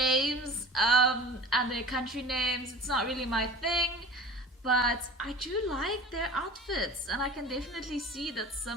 and their country names. It's not really my thing. But I do like their outfits, and I can definitely see that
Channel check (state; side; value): normal; both; correlation 0.39